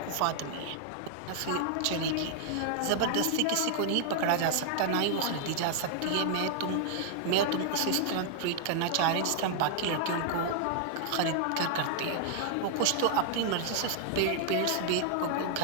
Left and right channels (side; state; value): both; different; correlation 0.00